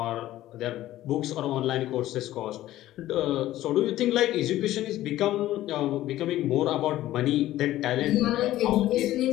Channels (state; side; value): quieter; right; 14.6 dB